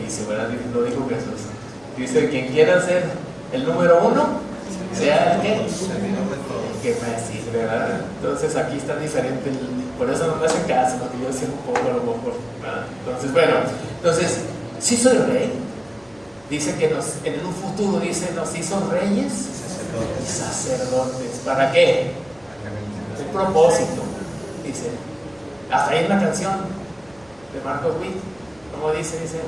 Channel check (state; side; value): noise; right; rumble, 29 dB below the sound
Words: ¿verdad? Lo dijo Jesús. Dice, quien quiera ser el número uno, sea el que me sirve, ¿verdad? Entonces aquí está diferente, por eso no me hacen caso, porque yo sé un poco a lo mejor, ¿verdad? Entonces, bueno, sí soy rey. Dice que en un futuro, dice, nos hizo reyes y sacerdotes. ¿Para qué? Un propósito. Dice, hasta ahí en la canción de Marcos Witt, ¿cómo dice?